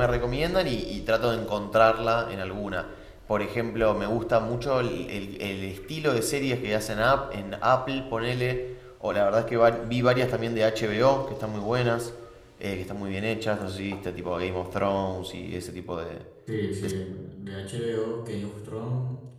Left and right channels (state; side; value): identical; both; correlation 1.00